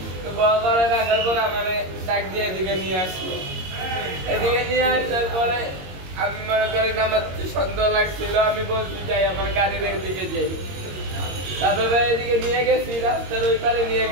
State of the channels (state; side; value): late; left; 22 ms